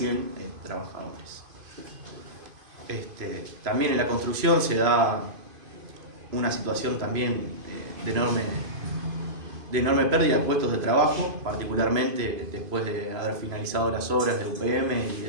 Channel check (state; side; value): late; left; 2.5 ms